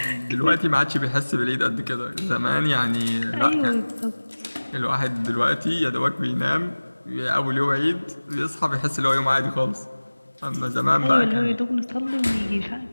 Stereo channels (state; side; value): inverted; both; correlation -1.00